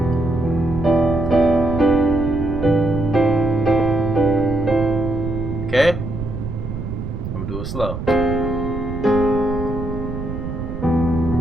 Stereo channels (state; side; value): noise; right; rumble, 6 dB below the sound